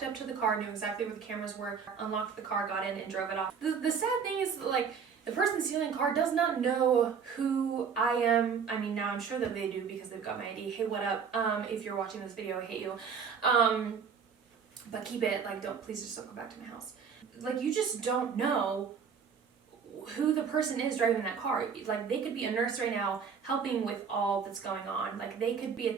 up to the car, knew exactly where the cameras were, unlocked the car, got in, and drove it off. The sad thing is, like, the person stealing the car does not know who I am. I mean, now I'm sure that they do because they've got my ID. Hey, what up? If you're watching this video, I hate you. But keep it, like, please just don't go back to my house. Like, you just don't know who the person is driving that car. Like, they could be a nurse right now helping with all that's going on. Like, they could be a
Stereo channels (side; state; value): left; quieter; 6.5 dB